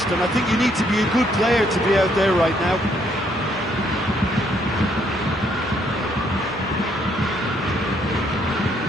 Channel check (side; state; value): both; normal; correlation 0.70